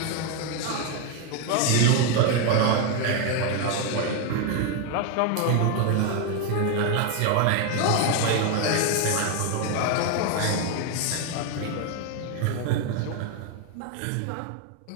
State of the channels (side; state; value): both; different; correlation 0.01